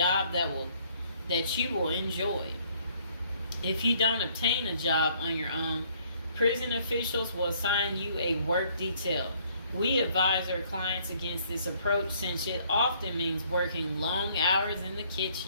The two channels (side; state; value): both; inverted; correlation -0.63